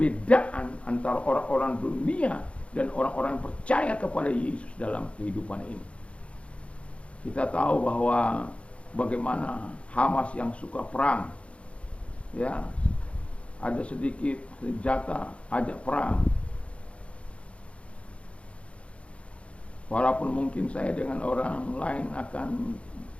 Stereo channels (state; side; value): late; right; 0.061 ms